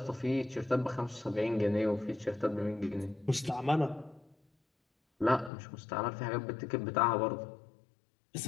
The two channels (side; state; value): right; drops out; at 5.5 s